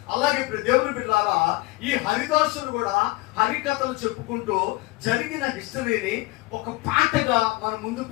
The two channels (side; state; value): right; quieter; 21.5 dB